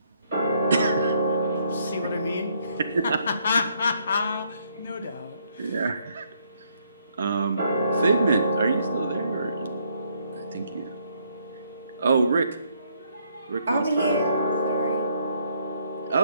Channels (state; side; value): inverted; both; correlation -0.70